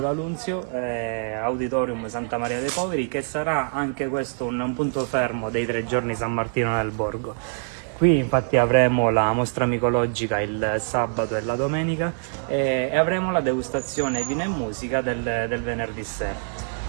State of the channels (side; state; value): left; silent; digital silence